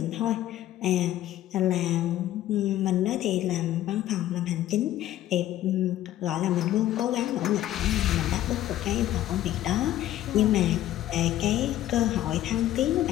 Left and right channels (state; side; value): quieter; right; 13.4 dB